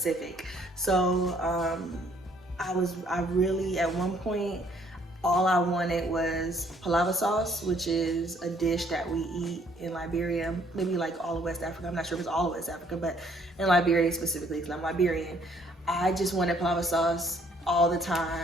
So I really, at one point, all I wanted was palava sauce, which is a dish that we eat in Liberia, maybe like all of West Africa. I'm not sure if it's all of West Africa, but in Liberia specifically, because I'm Liberian. I just wanted palava sauce all the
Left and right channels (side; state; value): both; normal; correlation 0.64